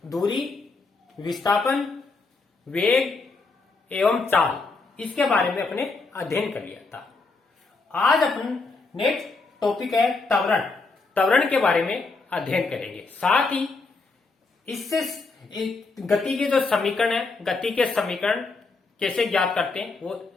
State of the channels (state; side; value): quieter; right; 4.0 dB